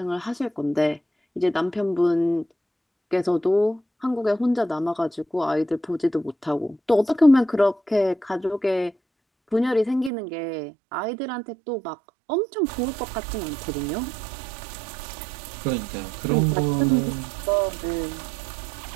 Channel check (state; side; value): drops out; left; at 10.1 s